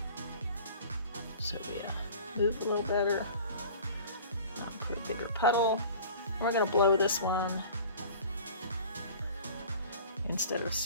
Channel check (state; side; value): inverted; both; correlation -0.44